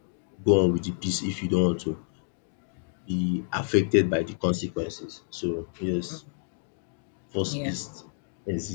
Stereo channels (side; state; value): right; silent; digital silence